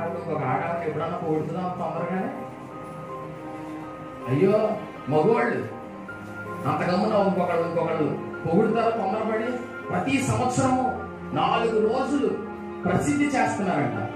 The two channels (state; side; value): identical; both; correlation 1.00